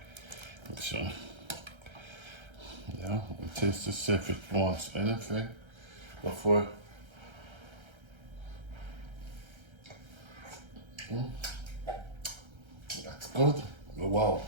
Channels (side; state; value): left; late; 1.3 ms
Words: Make sure. Yeah, and taste to see if it wants anything before. That's good. Wow,